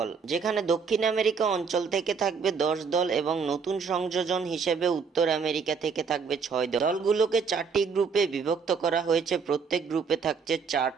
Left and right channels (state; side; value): quieter; left; 5.6 dB